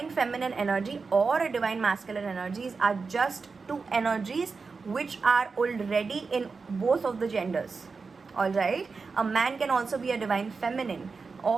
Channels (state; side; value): quieter; left; 4.6 dB